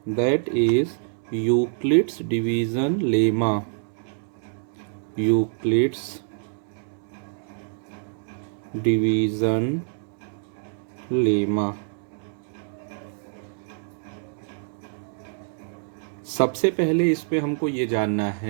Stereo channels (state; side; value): silent; left; 61 dB below the other